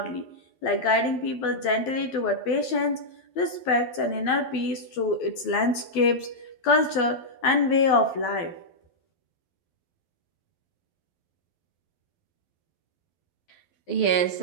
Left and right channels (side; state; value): right; late; 12 ms